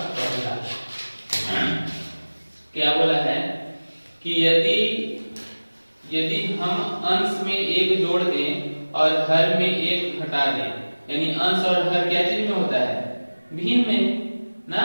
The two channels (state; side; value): inverted; both; correlation -1.00